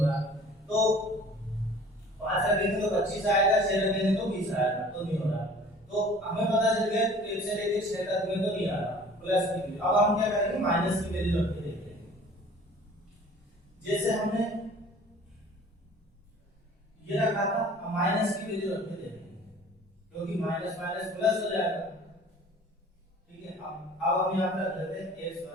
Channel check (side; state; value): both; normal; correlation 0.48